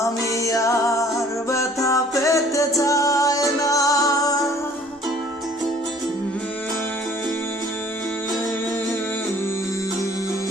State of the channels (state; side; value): normal; both; correlation 0.54